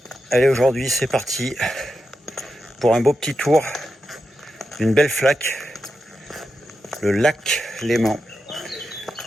allez aujourd'hui c'est parti pour un beau petit tour d'une belle flaque, le lac Léman.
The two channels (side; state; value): both; normal; correlation 0.88